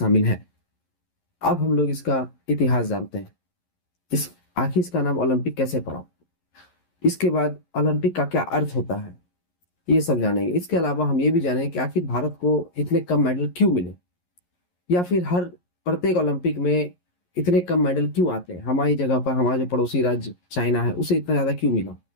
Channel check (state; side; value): late; right; 11 ms